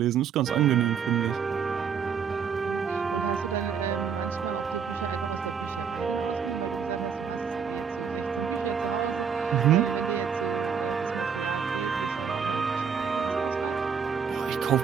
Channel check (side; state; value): left; quieter; 6.8 dB